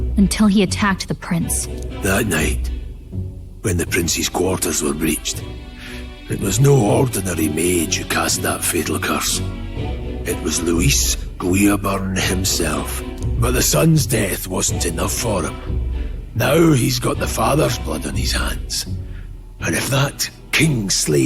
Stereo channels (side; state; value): both; identical; correlation 1.00